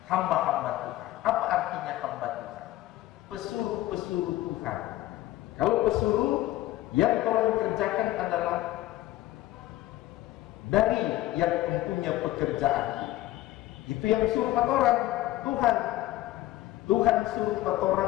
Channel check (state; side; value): quieter; right; 15.8 dB